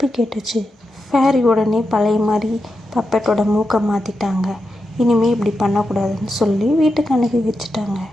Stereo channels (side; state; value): both; normal; correlation 0.88